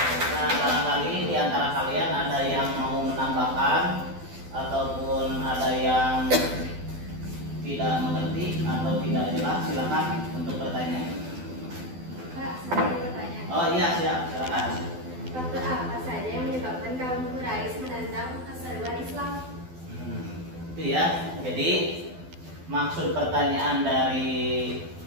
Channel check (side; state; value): left; late; 12 ms